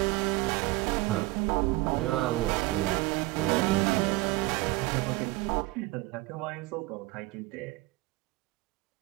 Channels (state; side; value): quieter; left; 20.1 dB